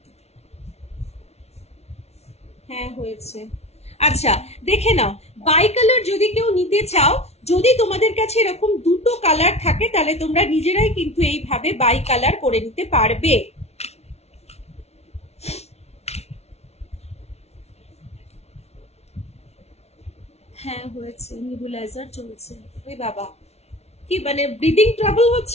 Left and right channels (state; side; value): late; right; 0.31 ms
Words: হ্যাঁ হয়েছে। আচ্ছা, দেখে নাও বাই কালার যদি কেউ নিতে চাও, যদি তোমাদের কাছে এরকম দুটো কালার থাকে, তাহলে তোমরা নিজেরাই কিন্তু এইভাবে বাই কালার করে নিতে পারবে। হ্যাঁ হয়েছে, নিবুলাইজার চলছে। ওই বাবা, কি মানে ব্রিদিং ট্রাবল